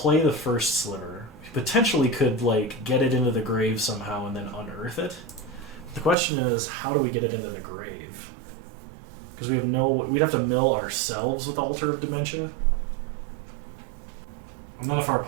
the first Sliver. We potentially could, like, get it into the grave somehow and then unearth it. The question is, how do we get it into the grave? Because we'd have to mill ourselves with Altar of Dementia. And then if our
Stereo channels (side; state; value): left; drops out; at 6.2 s